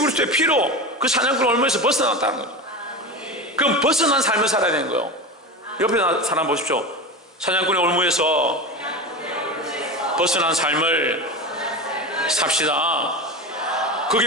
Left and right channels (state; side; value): normal; both; correlation 0.24